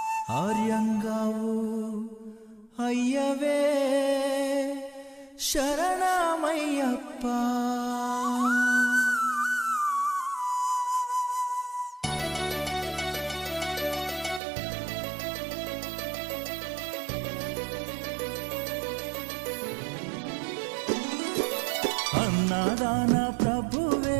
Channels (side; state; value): left; drops out; at 14.4 s